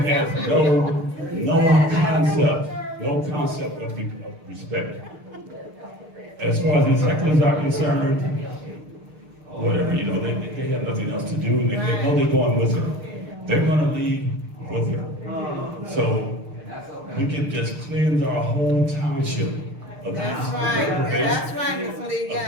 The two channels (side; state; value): left; late; 6.6 ms